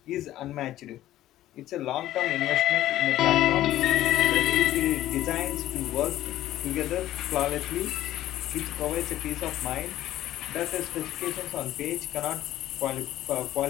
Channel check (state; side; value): quieter; right; 13.8 dB